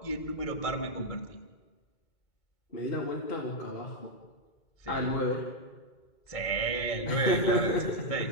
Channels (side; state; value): right; late; 2.2 ms